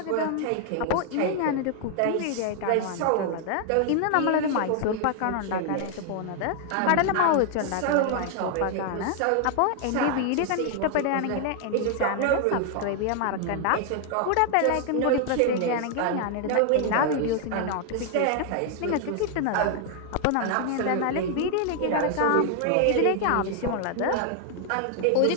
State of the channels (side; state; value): both; different; correlation 0.00